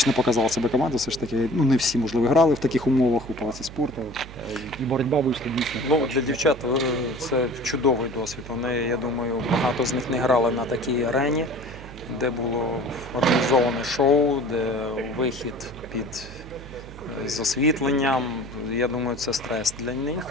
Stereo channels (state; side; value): noise; right; hum, 15 dB below the sound